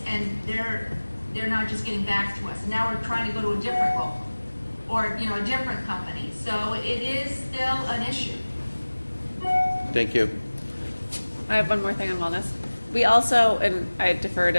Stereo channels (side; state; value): both; inverted; correlation -1.00